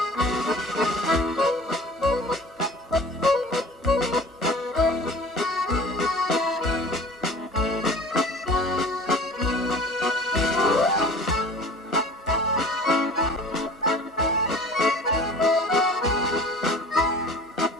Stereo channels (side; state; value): both; normal; correlation 0.43